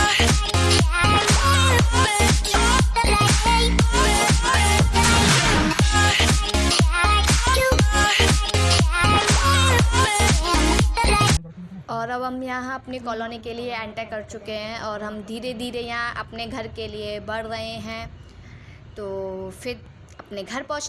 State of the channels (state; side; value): identical; both; correlation 1.00